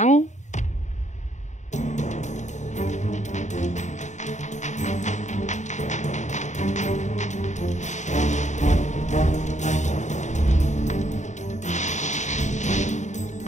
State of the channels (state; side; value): late; right; 0.34 ms